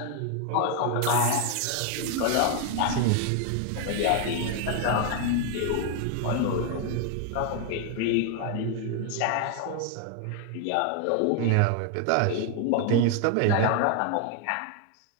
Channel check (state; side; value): different; both; correlation 0.01